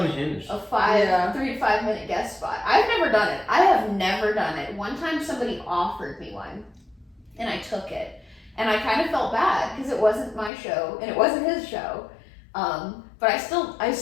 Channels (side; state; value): right; drops out; at 10.5 s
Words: unhinged. a 3 to 5 minute guest spot. I've never done it. I have never done it. One time somebody offered me one and I took it. And I kind of felt bad because it wasn't my show and it wasn't his show. but I